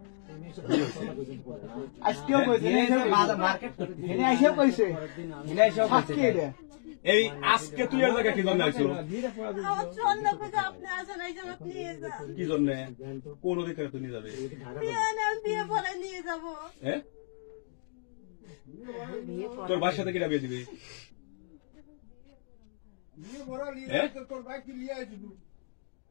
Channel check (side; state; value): right; silent; digital silence